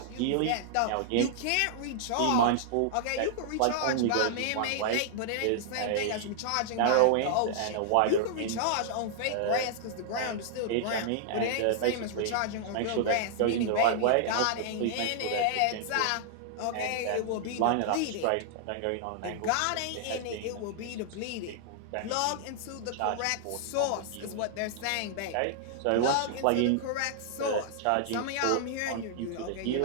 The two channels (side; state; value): both; different; correlation -0.01